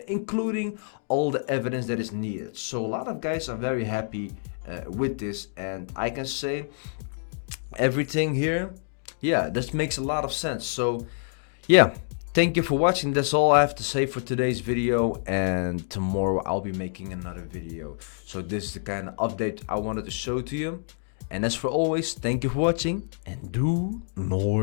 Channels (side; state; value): right; silent; digital silence